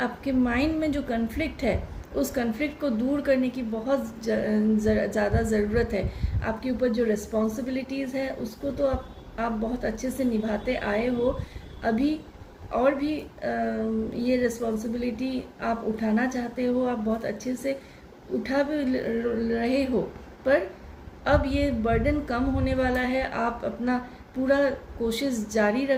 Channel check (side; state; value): both; identical; correlation 1.00